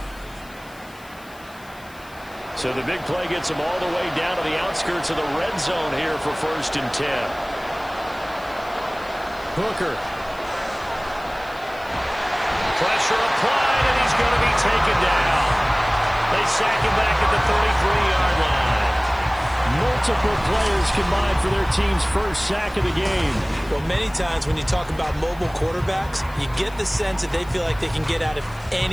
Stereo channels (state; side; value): noise; left; hiss, 24 dB below the sound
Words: So the big play gets them all the way down to the outskirts of the red zone here for 1st and 10. Hooker. Pressure applied, and he's going to be taken down. They sack him back at the 33-yard line. Multiple players combined for their team's first sack of the game. Well, many times when you talk about mobile quarterbacks, you get the sense that they feel like they can get out of